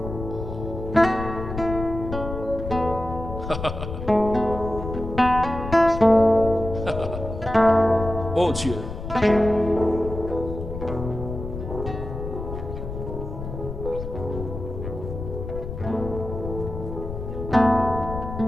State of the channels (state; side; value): noise; left; rumble, 7 dB below the sound